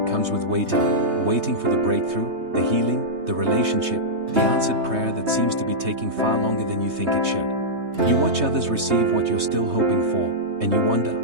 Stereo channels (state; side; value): late; left; 3.2 ms